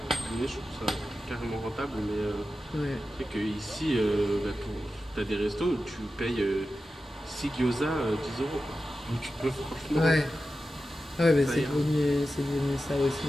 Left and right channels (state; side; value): normal; both; correlation 0.92